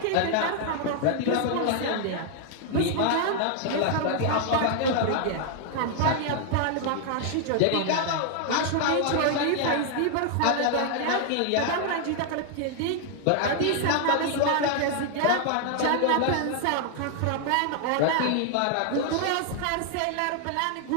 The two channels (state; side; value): different; both; correlation 0.00